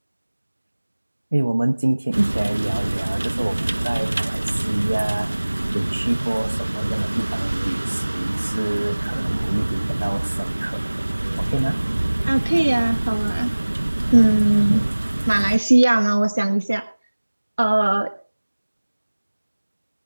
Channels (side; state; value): both; inverted; correlation -1.00